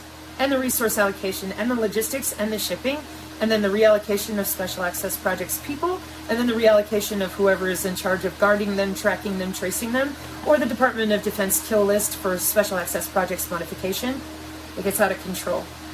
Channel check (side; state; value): both; identical; correlation 1.00